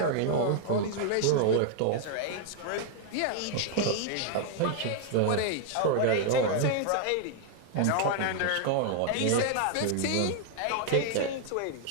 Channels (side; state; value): both; different; correlation 0.00